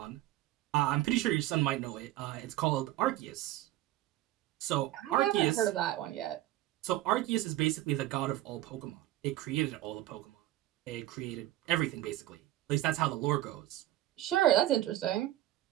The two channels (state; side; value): quieter; left; 14.8 dB